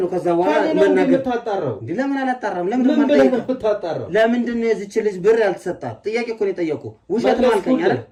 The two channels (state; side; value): identical; both; correlation 1.00